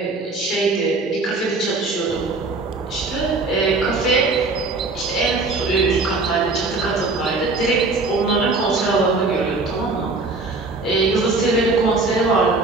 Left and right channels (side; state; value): left; quieter; 3.5 dB